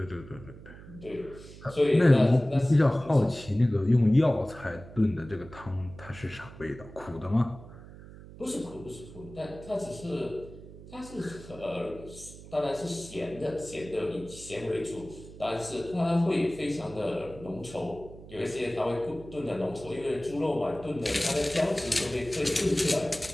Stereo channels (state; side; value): noise; right; hum, 16 dB below the sound